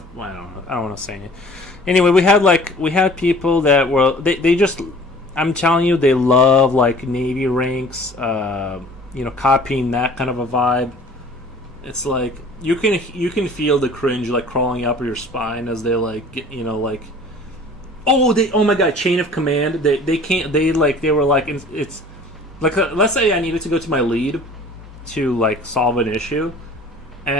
I don't want to say it. Anyway, we had people that were they just. I'm telling you, they love like Navy ranks. Copying that kind of a vibe. It's like you can feel the cringe like crawling up your spine as they like like. Oh my god, chain of command. They can't. They were like it's like let's say I needed to go to my lead to like solve an issue,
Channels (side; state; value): both; normal; correlation 0.48